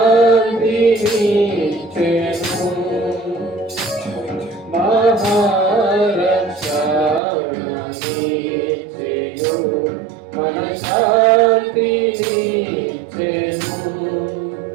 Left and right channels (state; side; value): drops out; left; at 7.2 s